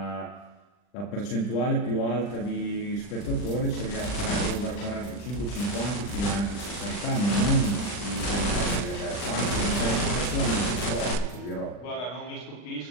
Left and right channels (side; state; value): right; late; 40 ms